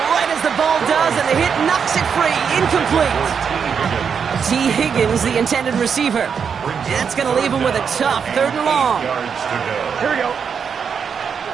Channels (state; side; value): quieter; left; 6.7 dB